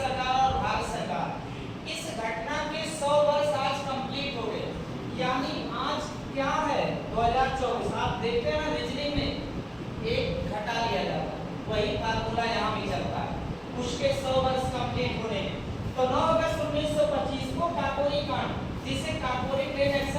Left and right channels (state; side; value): identical; both; correlation 1.00